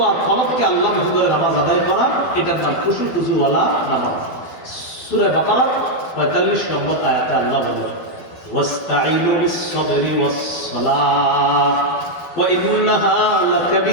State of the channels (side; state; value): right; late; 12 ms